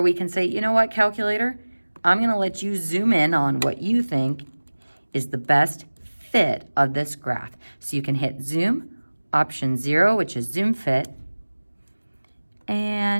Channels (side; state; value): both; inverted; correlation -1.00